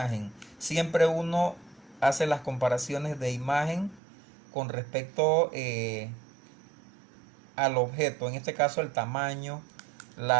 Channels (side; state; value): left; drops out; at 4.0 s